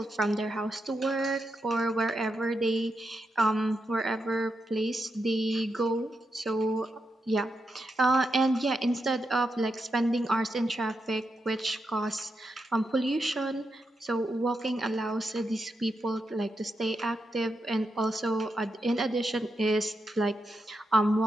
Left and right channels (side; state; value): both; normal; correlation 0.85